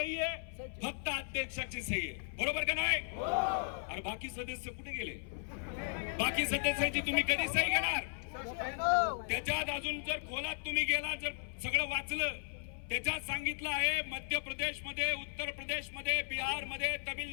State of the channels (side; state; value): right; silent; 54 dB below the other